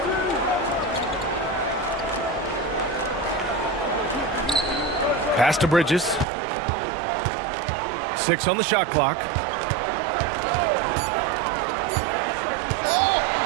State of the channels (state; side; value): drops out; left; at 6.2 s